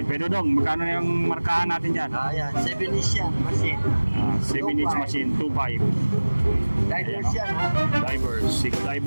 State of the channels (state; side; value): inverted; both; correlation -1.00